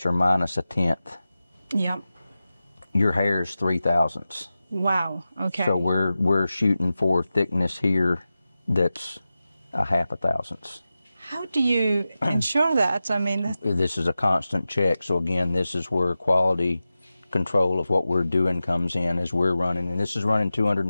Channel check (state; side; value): inverted; both; correlation -0.94